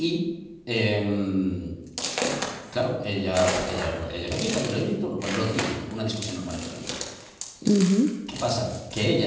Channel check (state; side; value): identical; both; correlation 1.00